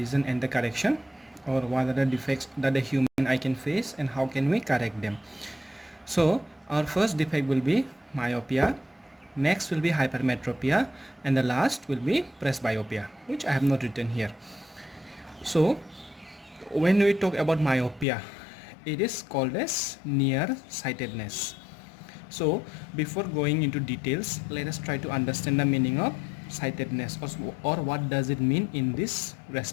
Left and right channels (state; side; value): drops out; right; at 18.1 s